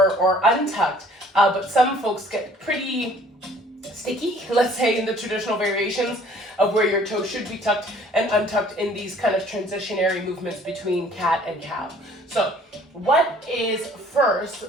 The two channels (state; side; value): normal; both; correlation 0.55